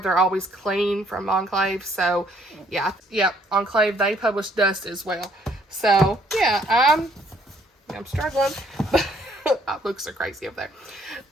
always clean from Enclave. So yeah, Enclave, they publish Dust as well. So yeah, I'm struggling. My books are crazy up there,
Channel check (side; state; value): both; normal; correlation 0.65